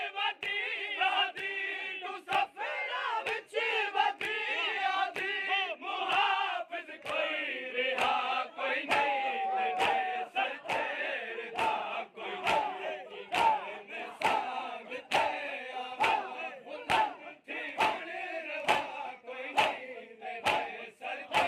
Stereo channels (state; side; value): identical; both; correlation 1.00